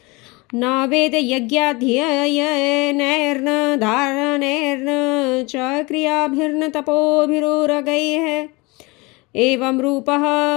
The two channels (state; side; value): quieter; right; 25.3 dB